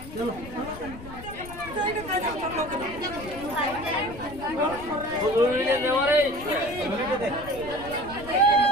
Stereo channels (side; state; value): left; noise; rumble, 14 dB below the sound